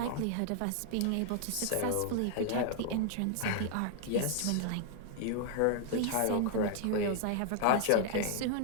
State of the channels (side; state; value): both; different; correlation 0.00